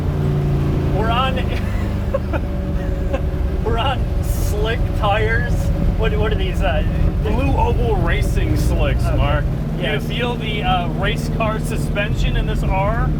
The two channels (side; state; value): both; identical; correlation 1.00